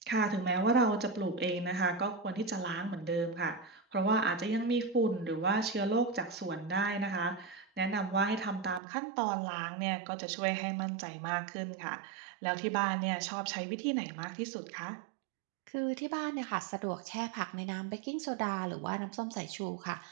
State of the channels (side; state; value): left; drops out; at 8.8 s